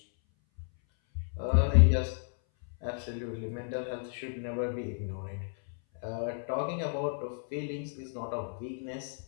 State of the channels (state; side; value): silent; right; 56 dB below the other